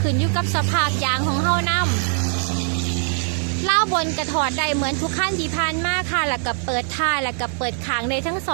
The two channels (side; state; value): left; silent; 64 dB below the other